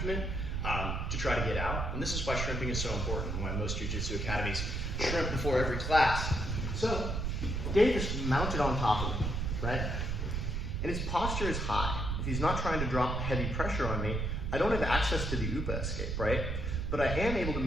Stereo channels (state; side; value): noise; right; rumble, 1 dB below the sound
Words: to try to get out. And this is why shrimping is so important, and why most jiu-jitsu academies shrimp before every class. So Dave is mounted on top of me, right? And his posture is high. If he's not trying to drop heavy pressure on me, I don't have access to the UPA escape, right? But I am able to